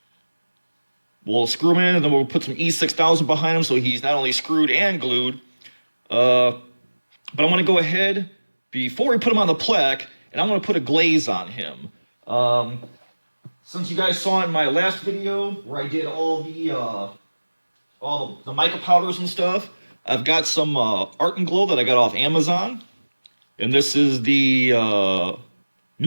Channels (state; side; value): inverted; both; correlation -1.00